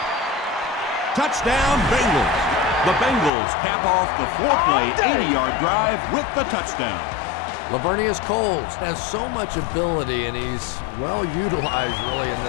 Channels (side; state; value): right; drops out; at 3.3 s